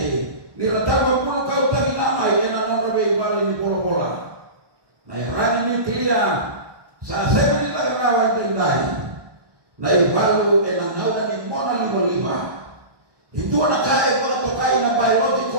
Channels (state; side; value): late; left; 1.2 ms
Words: Niratama puno kau tagi namay, na nona may ibalo ni bola-bola. Na irani nuklia, sa sebe nila karawan tinday. Na ibalo, na ngayon ni mona lima-lima. Ito na kaya mga tokay na